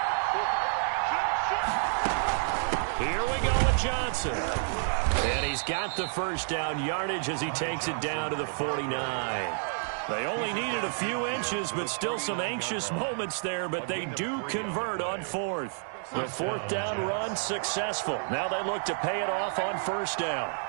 Here we go with Johnson. And he's got the 1st down yardage as he takes it down to the 49. They only needed a few inches, but still some anxious moments there, but they do convert on 4th. The 4th down run successful. Now they look to pay it off on 1st down.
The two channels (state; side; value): silent; left; digital silence